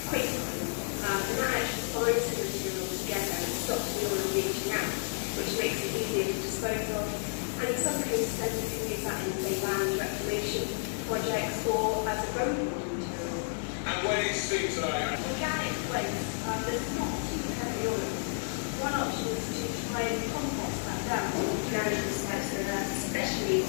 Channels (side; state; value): right; silent; 57 dB below the other